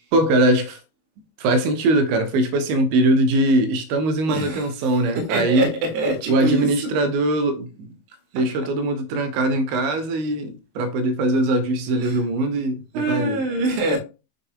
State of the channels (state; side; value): late; left; 19 ms